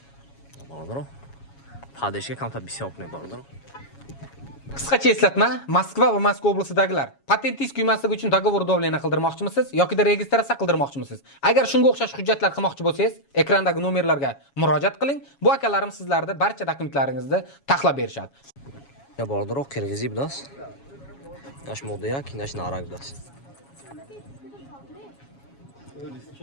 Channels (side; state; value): right; late; 7.2 ms